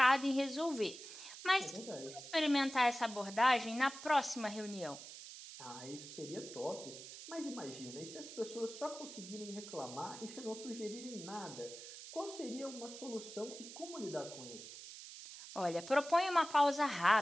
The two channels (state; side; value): noise; right; hiss, 13 dB below the sound